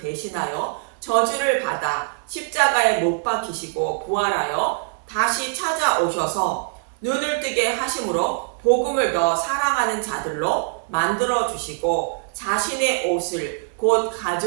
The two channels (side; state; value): left; silent; digital silence